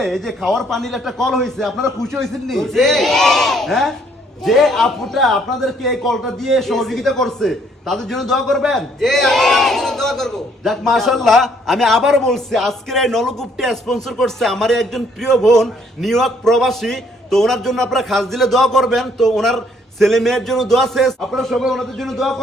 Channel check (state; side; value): normal; both; correlation 0.66